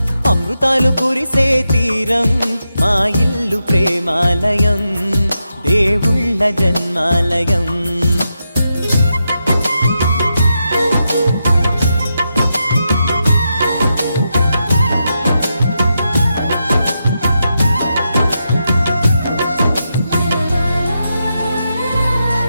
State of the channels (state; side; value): inverted; both; correlation -0.86